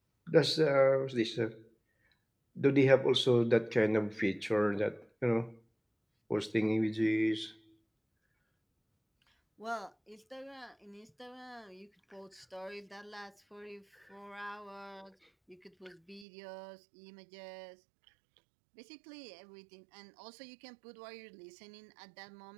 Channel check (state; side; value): drops out; left; at 16.2 s